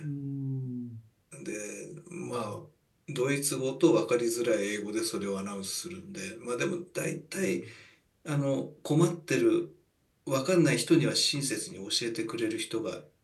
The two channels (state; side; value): identical; both; correlation 1.00